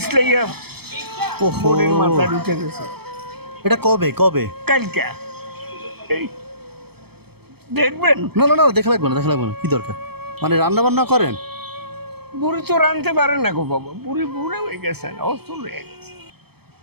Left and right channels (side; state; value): left; late; 0.96 ms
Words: ওহো, বডির মাথায় উঠে গেছে। এটা কবে কবে? কালকে এই দেখবেন। না না না, দেখা লাগবে না, দেখা লাগবে না, কি দরকার? মানে রান্না বান্না করেন? বুড়ি তো রানতে পারে না গো বাবা, বুড়ি বুড়ে হয়ে গেছে, অস্ত হয়ে গেছে।